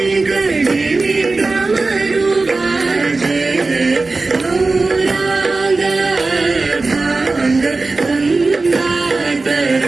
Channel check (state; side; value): quieter; left; 3.6 dB